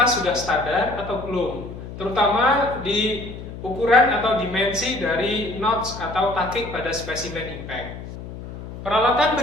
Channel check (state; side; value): noise; left; hum, 11 dB below the sound